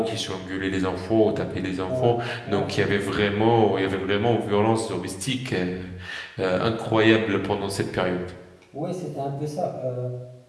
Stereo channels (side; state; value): both; identical; correlation 1.00